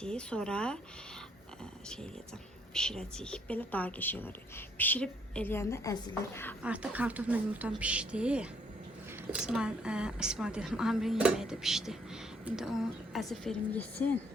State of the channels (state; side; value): normal; both; correlation 0.68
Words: Sonra şey eləyəcəm. Pişirəcəyik. Belə daha qəşəng olur. Pişirib eləyəndə əzilir. Artıq kartofla yumurtam pişdi. İsmail dedim, Amirin yeməyi də pişdi. İndi onu əzif verim yesin,